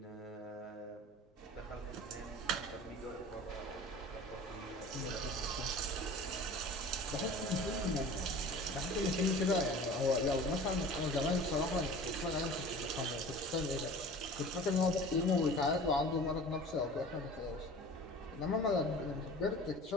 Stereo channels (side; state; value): both; normal; correlation 0.41